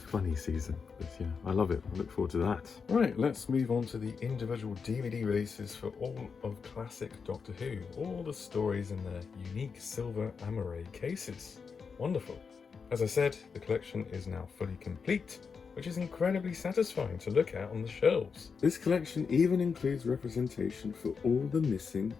season, but yeah, I love it. I look forward to that. Right, let's move on to the individual DVD releases for all of classic Doctor Who. All the stories in their unique silver amaray cases. Wonderful. As I said, the collection is now fully complete. which is incredibly satisfying to look at on the shelves. This collection even includes representation for all the missing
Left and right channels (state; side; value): quieter; right; 5.6 dB